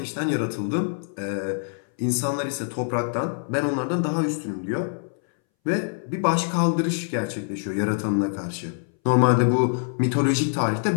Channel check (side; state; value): right; silent; 61 dB below the other